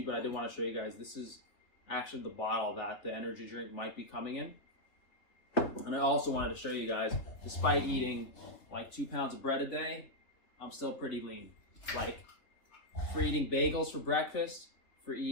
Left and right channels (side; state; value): right; late; 3.2 ms